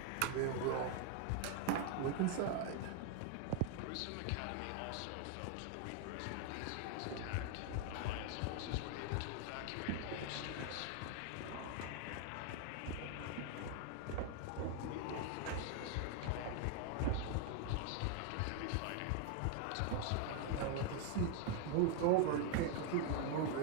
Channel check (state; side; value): different; both; correlation 0.00